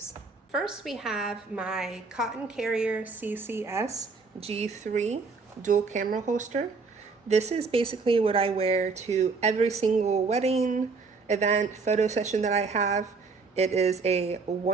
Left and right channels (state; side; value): quieter; left; 4.5 dB